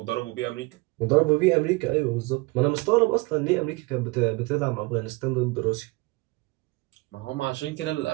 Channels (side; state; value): left; quieter; 24.4 dB